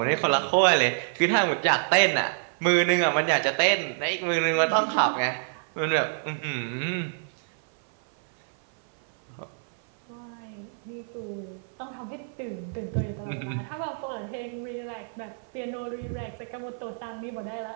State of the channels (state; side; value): silent; left; 56 dB below the other